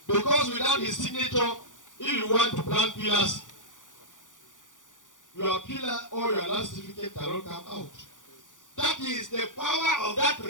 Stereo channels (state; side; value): late; right; 0.87 ms